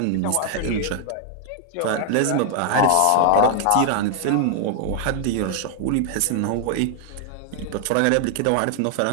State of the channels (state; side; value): different; both; correlation 0.00